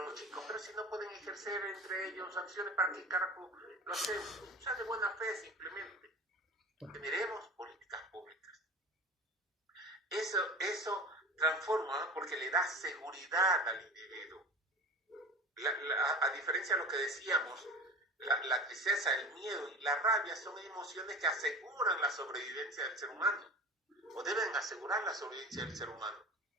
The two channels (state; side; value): normal; both; correlation 0.36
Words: chicos, pero si no pueden ejercer entre ellos acciones, ¿para qué carajo lo hacemos? O sea, de buena fe simplemente. Generemos políticas públicas. Eso transforma porque le da seguridad al individuo. A diferencia de lo que decíamos, la tristeza, el miedo y la rabia son emociones que aseguran la sobrevivencia del ser humano, o deben asegurar la sobrevivencia del ser humano.